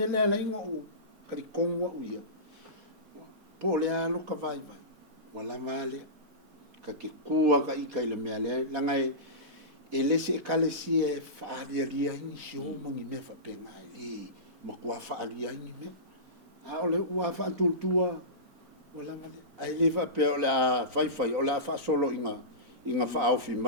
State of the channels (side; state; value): left; late; 4.4 ms